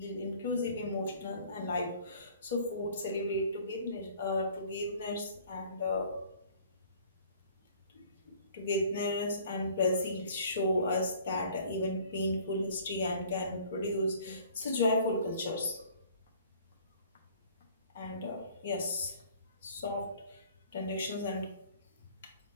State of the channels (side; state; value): both; inverted; correlation -0.53